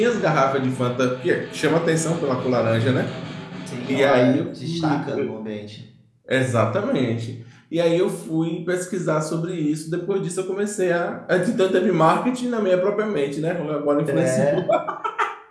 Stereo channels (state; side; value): identical; both; correlation 1.00